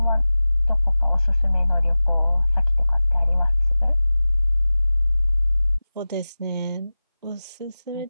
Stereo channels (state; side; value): inverted; both; correlation -0.97